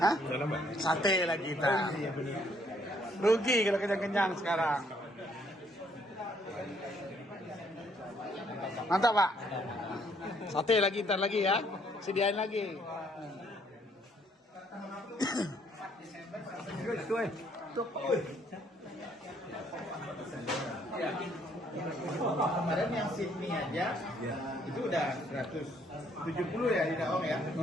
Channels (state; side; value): normal; both; correlation 0.66